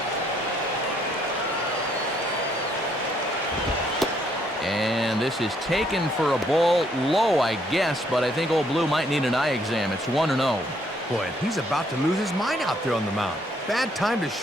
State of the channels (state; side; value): normal; both; correlation 0.69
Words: And this is taken for a ball low, I guess, but I think old Blue might need an eye exam. It's 1-0. Boy, and he's about to lose his mind out there on the mound. Bad time to